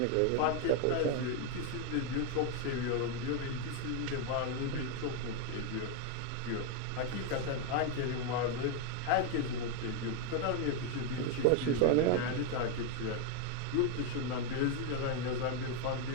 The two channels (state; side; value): different; both; correlation 0.01